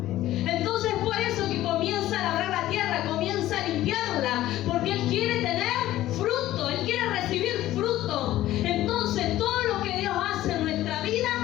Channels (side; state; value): right; quieter; 14.6 dB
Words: comienza a limpiarla, porque Él quiere tener fruto, Él quiere recibir fruto. Entonces todo lo que Dios hace en nuestra vida